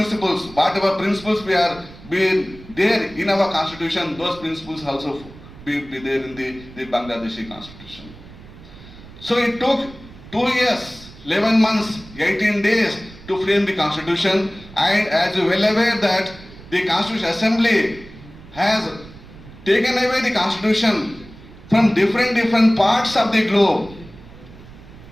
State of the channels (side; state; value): right; noise; rumble, 19 dB below the sound